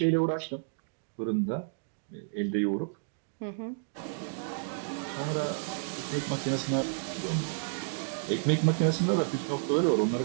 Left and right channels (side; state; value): left; silent; digital silence